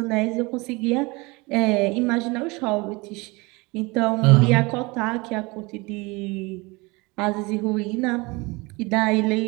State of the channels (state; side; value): quieter; left; 25.3 dB